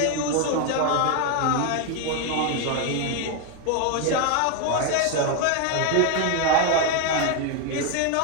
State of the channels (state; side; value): different; both; correlation 0.01